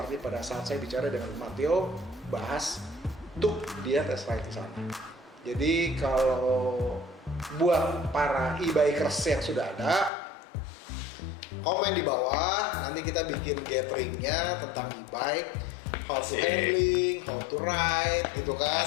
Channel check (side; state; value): right; drops out; at 10.1 s